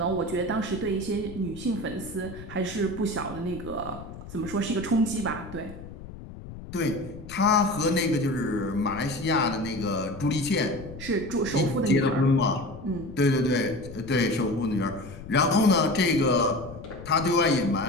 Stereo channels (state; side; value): noise; left; rumble, 14 dB below the sound